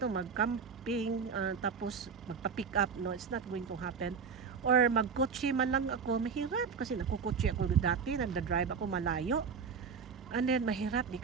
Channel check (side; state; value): left; quieter; 5.9 dB